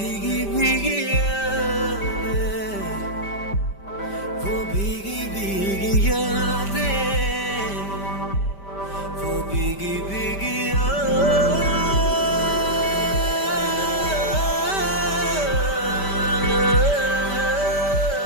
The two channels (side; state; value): right; late; 5.1 ms